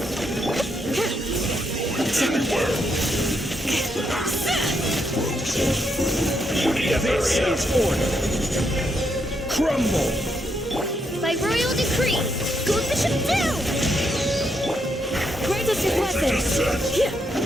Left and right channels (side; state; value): both; normal; correlation 0.78